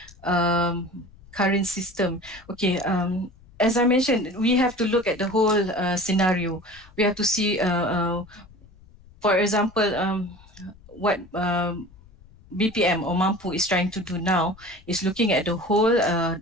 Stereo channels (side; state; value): left; noise; rumble, 24 dB below the sound